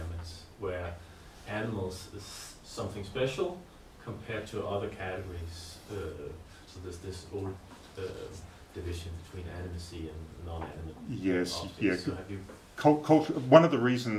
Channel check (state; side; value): identical; both; correlation 1.00